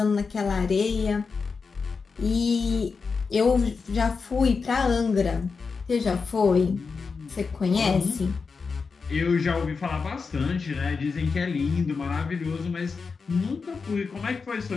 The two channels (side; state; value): right; quieter; 4.9 dB